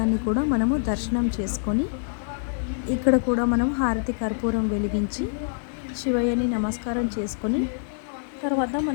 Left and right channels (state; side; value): silent; right; digital silence